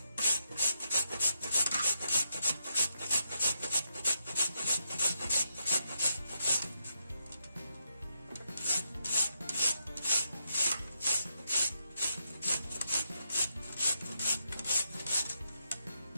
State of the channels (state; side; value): inverted; both; correlation -0.82